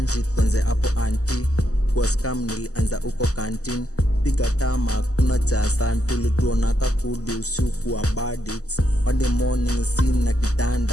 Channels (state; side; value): late; right; 0.66 ms